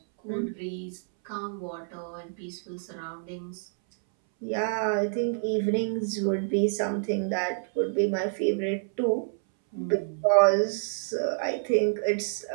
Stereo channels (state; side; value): silent; left; 59 dB below the other